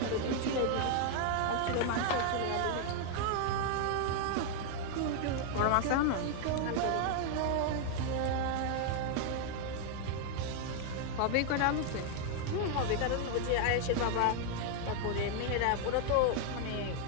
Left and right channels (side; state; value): both; different; correlation 0.00